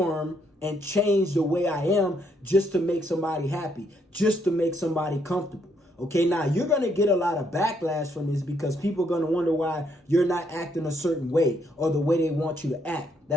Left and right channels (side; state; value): both; normal; correlation 0.72